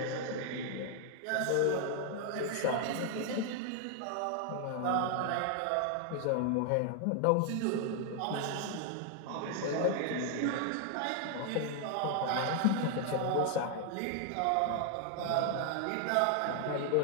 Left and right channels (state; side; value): different; both; correlation 0.00